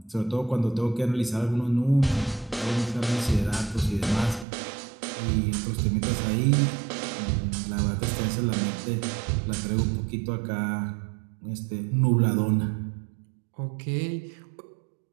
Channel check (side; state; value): left; drops out; at 4.5 s